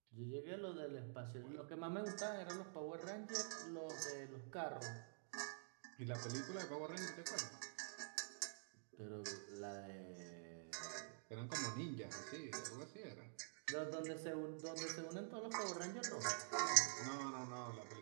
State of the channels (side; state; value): left; silent; digital silence